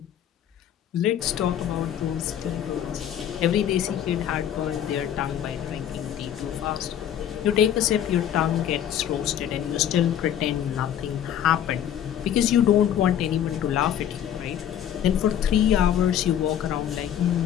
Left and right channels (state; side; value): quieter; right; 10.1 dB